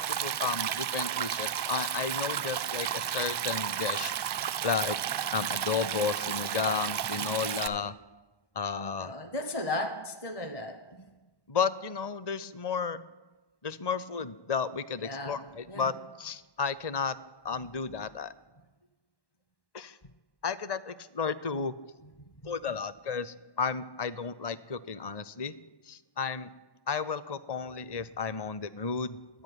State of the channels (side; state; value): right; late; 1.1 ms